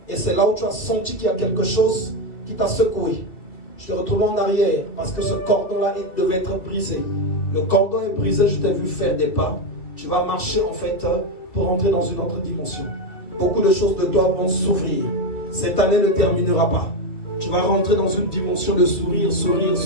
Et c'est là où tu as senti qu'il y a quelque chose qui t'a secoué. Je te retrouve en arrière parce que ce cordon-là devait être brisé. Le cordon est brisé, je t'ai vu faire des pas. Tu vas marcher en fait pour entrer dans une autre dimension. Beaucoup de choses de toi vont s'ouvrir. Cette année ne terminera pas. Tu vas rentrer dans une dimension de sourire, sourire,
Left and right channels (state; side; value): late; right; 2.3 ms